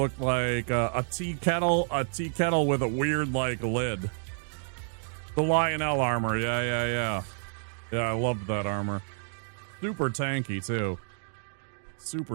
like a tea kettle with a weird, like, lid. The Lionel armor, yeah, I loved that armor. Super tanky too.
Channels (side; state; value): left; silent; digital silence